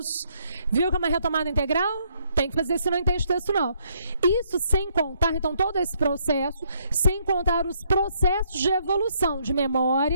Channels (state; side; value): inverted; both; correlation -0.71